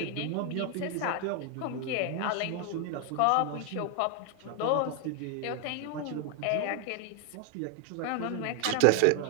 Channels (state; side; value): different; both; correlation 0.01